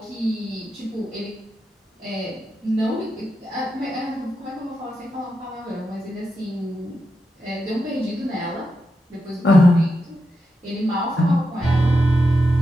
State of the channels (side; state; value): both; normal; correlation 0.86